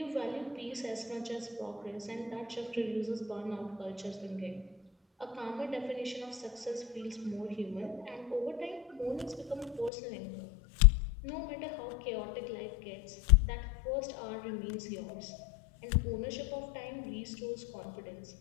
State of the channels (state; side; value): drops out; right; at 9.9 s